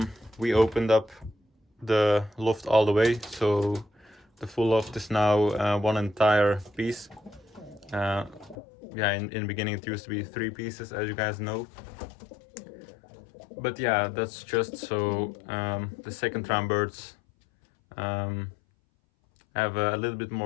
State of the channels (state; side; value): drops out; right; at 8.6 s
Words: we opened up the loft all the way, so the full loft is now one entire piece. Yeah, in the beginning it used to be 3 pieces, as you guys know. But yeah, that's just so the second round birds have a little bit